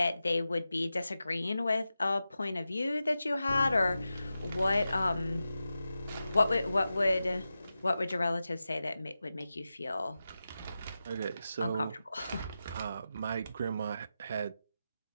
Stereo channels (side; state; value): both; inverted; correlation -0.92